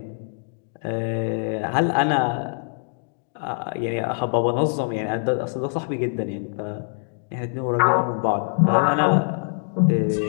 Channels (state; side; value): silent; right; digital silence